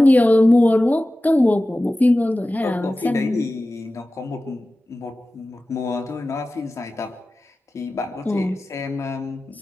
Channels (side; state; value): both; normal; correlation 0.96